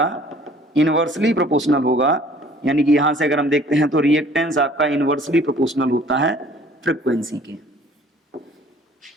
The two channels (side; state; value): both; normal; correlation 0.53